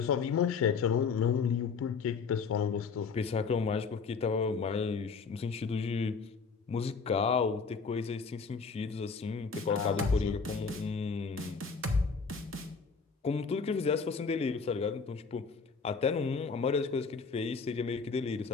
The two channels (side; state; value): right; quieter; 5.2 dB